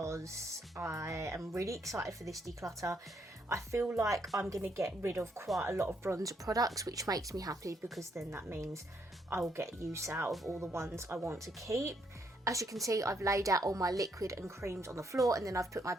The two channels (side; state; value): both; normal; correlation 0.74